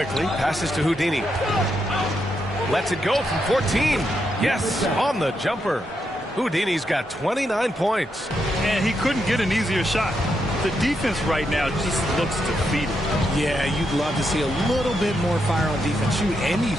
passes to Houdini. Lets it go from 14. Yes, on the jumper. Houdini's got 29 points. And he couldn't get an easier shot. The defense right now just looks defeated. Yeah, you'd love to see a little bit more fire on defense. Shoot, any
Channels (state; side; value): normal; both; correlation 0.82